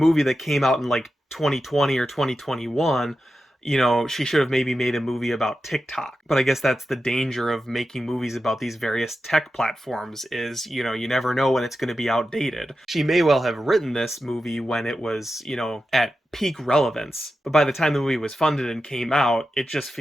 that came out in like 2020 or 2021. You know, she should have maybe made a movie about TikTok. But I guess that's the danger of making movies about these various tech platforms is, you know, you never know when it's going to be outdated. She may well have written this movie when it was, you know, at peak relevance. But by the time the movie was funded and came out, it just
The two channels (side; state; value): both; normal; correlation 0.91